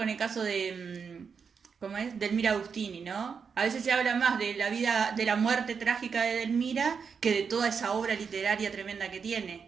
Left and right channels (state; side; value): quieter; left; 6.0 dB